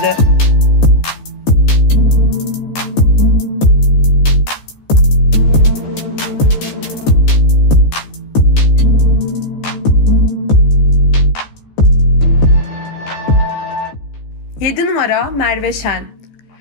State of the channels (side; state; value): right; late; 14 ms